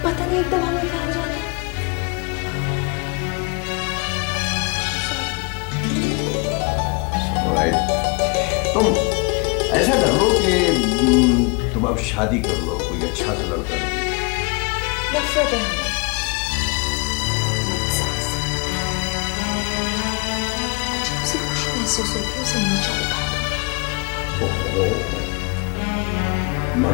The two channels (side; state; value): right; quieter; 32.5 dB